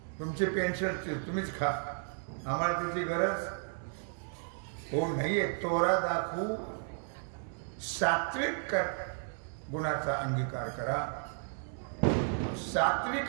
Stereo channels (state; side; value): silent; left; 55 dB below the other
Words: तुमचे पेन्शन तुम्हीच खा, आम्हाला त्याची गरज हो नाहीये. तोरा दाखवू, सात्विक गुणाचा अंगीकार करा.